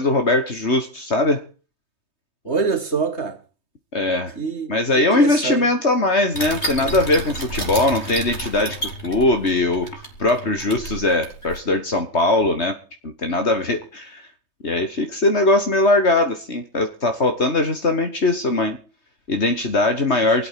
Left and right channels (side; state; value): right; late; 3.2 ms